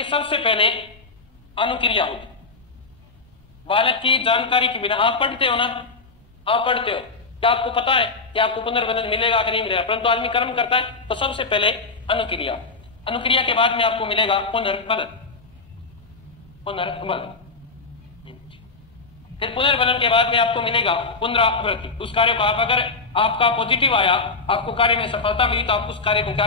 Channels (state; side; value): quieter; right; 4.0 dB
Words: सबसे पहले अनुक्रिया होगी बालक की जानकारी के बिना। आप पढ़ते हो ना, आप पढ़ते हो, क्या आपको पता है कि आपको पुनर्वनन मिलेगा कि नहीं मिलेगा, परंतु आदमी कर्म करता है। तो सबसे पहले अनुक्रिया, अनुक्रिया के बाद में आपको मिलेगा पुनर्वनन, पुनर्वनन, फिर पुनर्वनन के बाद में आपको मिलेगा पुनरावृत्ति। उस कार्य को आप अगर आपका पॉजिटिव आया, आपको कार्य में सफलता मिली, तो आप उस कार्य को क्या